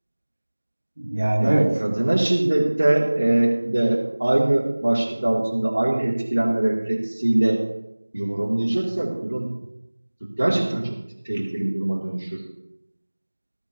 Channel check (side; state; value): both; inverted; correlation -1.00